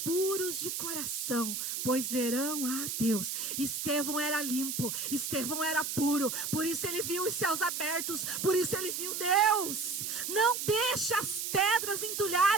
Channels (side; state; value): right; noise; hiss, 3 dB below the sound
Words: de coração, pois verão a Deus. Estevão era limpo, Estevão era puro, por isso ele viu os céus abertos, por isso ele viu Deus. Não deixe as pedras